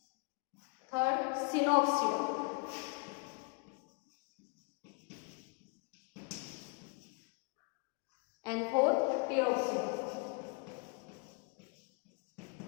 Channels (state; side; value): quieter; right; 35.0 dB